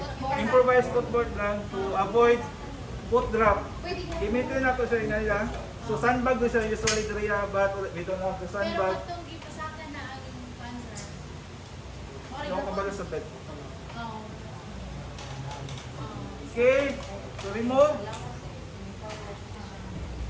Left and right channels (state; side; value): identical; both; correlation 1.00